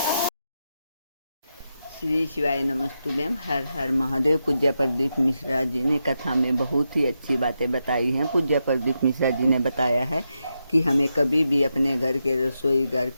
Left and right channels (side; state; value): both; inverted; correlation -0.86